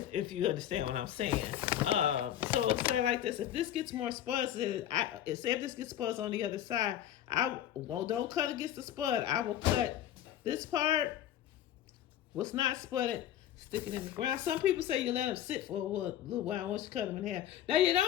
you understand what I'm saying. So it's like this. If this gets more spuds, say if this gets spuds on the other side, don't cut against the spud. I will cut this part, what's not spudded, stick it in the ground. Some people say you let them sit for a little while once you cut them in half. Now you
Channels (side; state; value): right; quieter; 11.5 dB